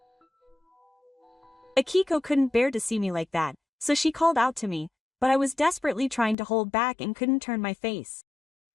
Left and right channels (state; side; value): drops out; right; at 6.4 s